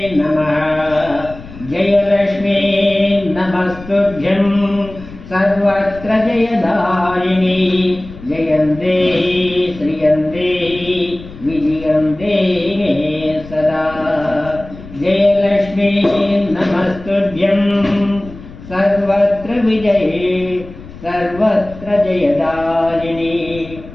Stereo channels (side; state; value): left; noise; rumble, 16 dB below the sound